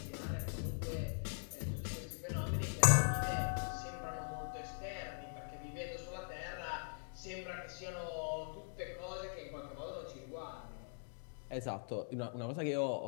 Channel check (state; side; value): silent; right; digital silence